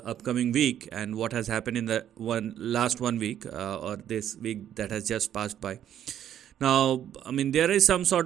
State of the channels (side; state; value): left; quieter; 10.5 dB